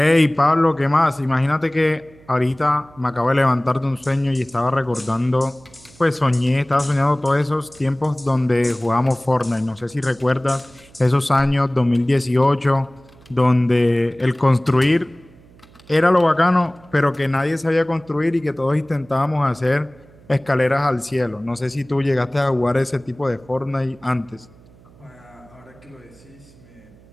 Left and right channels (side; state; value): right; noise; hum, 26 dB below the sound